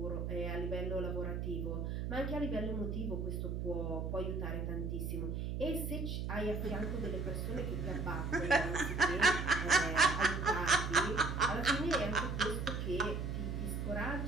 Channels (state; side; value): noise; right; hum, 2 dB below the sound